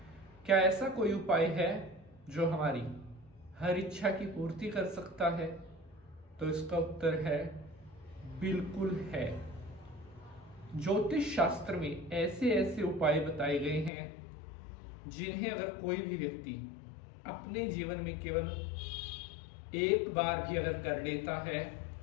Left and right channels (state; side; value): drops out; right; at 13.9 s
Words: क्या ऐसा कोई उपाय है जो हमारी हर इच्छा की पूर्ति कर सकता है? तो इसका उत्तर है बिल्कुल है। ज्योतिष शास्त्र में ऐसे ऐसे उपाय बताए गए हैं जिन्हें अगर कोई भी व्यक्ति अपने जीवन में केवल एक बार भी अगर कर लेता है